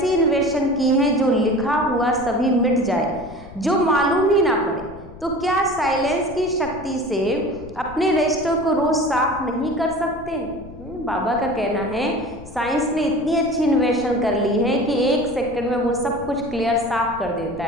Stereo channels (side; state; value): left; noise; rumble, 17 dB below the sound